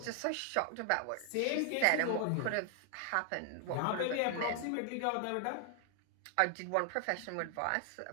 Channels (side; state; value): both; different; correlation 0.00